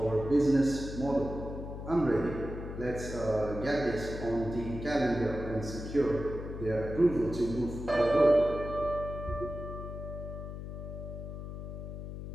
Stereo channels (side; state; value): left; noise; hum, 8 dB below the sound